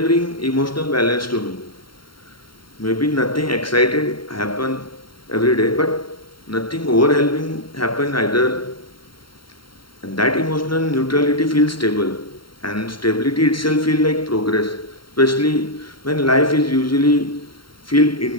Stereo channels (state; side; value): late; right; 0.73 ms